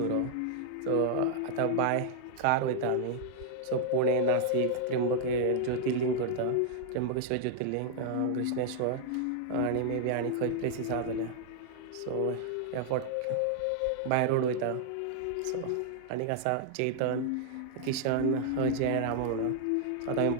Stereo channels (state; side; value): different; both; correlation -0.01